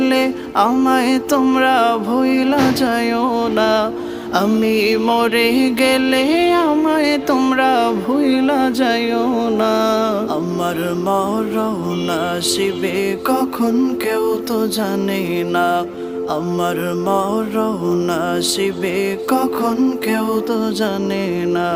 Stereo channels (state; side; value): identical; both; correlation 1.00